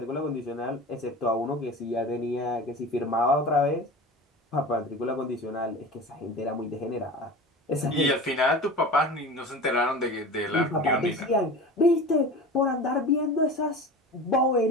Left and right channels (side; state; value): both; normal; correlation 0.34